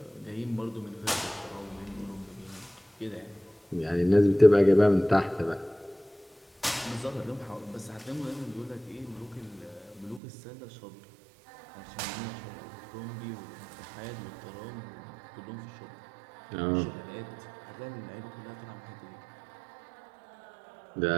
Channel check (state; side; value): drops out; left; at 10.2 s